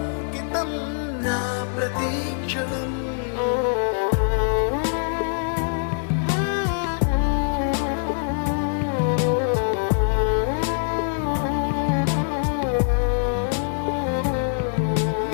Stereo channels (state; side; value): silent; right; digital silence